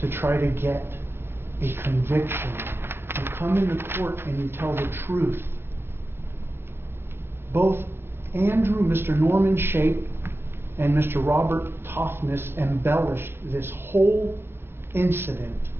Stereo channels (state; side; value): late; left; 0.11 ms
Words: try to get a conviction. You come into court and you tell the truth. Both Andrew, Mr. Norman Shape, and Mr. Robert Toughness embellished this whole incident.